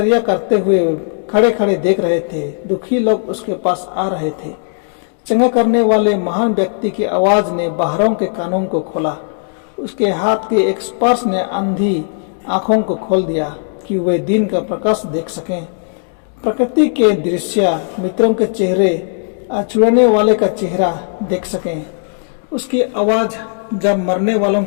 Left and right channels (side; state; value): right; silent; 68 dB below the other